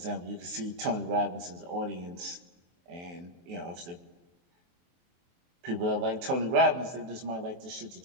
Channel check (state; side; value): late; left; 23 ms